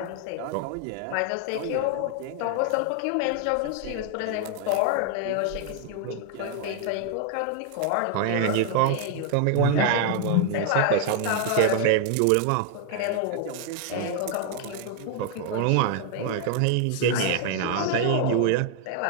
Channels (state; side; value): different; both; correlation 0.00